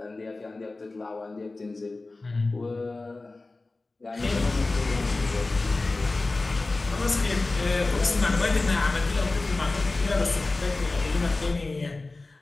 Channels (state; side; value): quieter; right; 3.3 dB